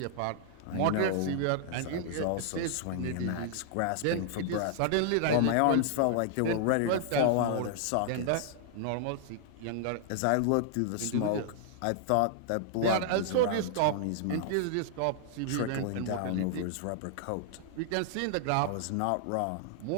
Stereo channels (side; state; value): both; different; correlation 0.00